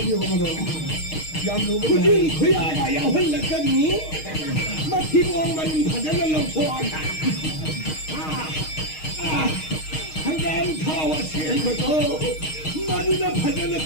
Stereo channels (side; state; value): right; late; 6.4 ms